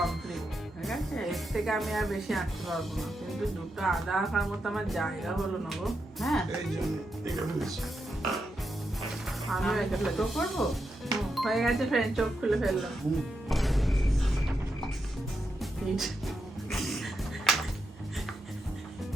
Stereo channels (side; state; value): both; normal; correlation 0.85